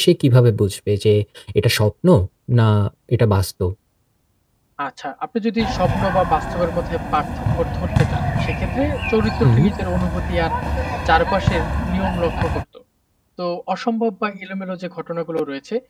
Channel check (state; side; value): identical; both; correlation 1.00